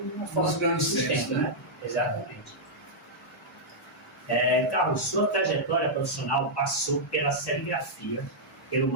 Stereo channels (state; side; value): normal; both; correlation -0.08